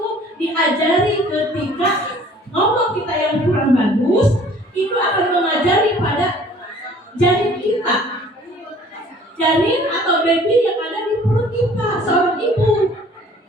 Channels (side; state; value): both; normal; correlation 0.53